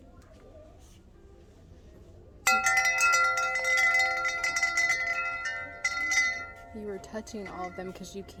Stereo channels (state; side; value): identical; both; correlation 1.00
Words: You were touching all of them because you